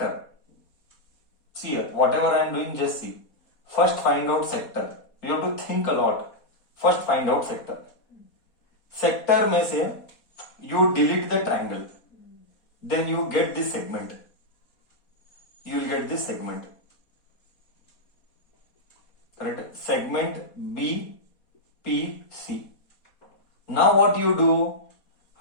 See here, whatever I am doing, just see. First, find out sector. You have to think a lot. First, find out sector. Sector में से you delete the triangle. Then you get this segment. You will get this segment. Correct? Segment BPC. Now what you do?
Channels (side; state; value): right; late; 4.2 ms